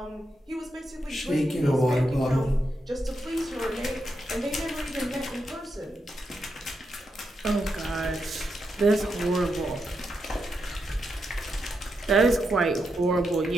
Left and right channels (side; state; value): both; normal; correlation 0.84